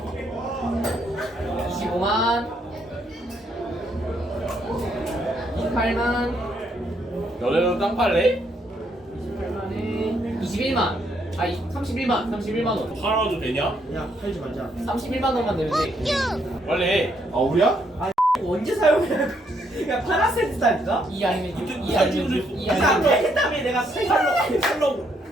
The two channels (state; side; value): normal; both; correlation 0.73